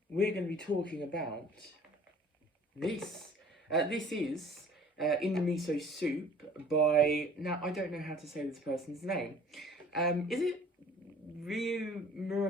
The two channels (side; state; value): both; normal; correlation 0.51